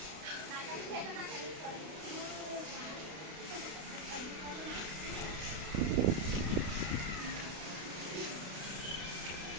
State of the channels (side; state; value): left; late; 32 ms